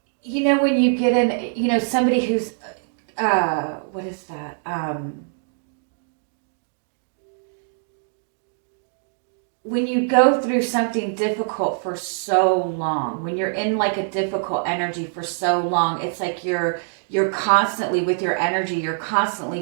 When you get in, somebody who's, what is that? When you go through something difficult for so long, when you're in like a difficult energy for so long, it's like you're constantly with your energy, you're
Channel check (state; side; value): silent; left; digital silence